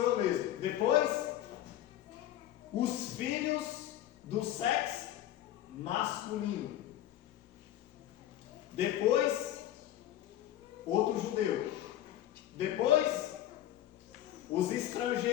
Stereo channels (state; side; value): quieter; right; 12.7 dB